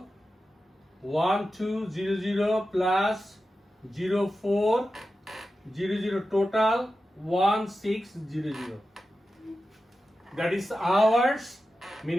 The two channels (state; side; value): normal; both; correlation 0.92